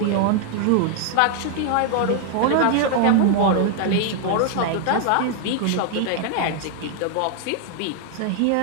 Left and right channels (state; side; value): different; both; correlation 0.00